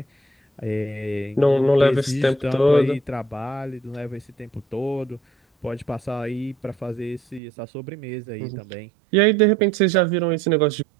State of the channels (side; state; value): left; drops out; at 7.4 s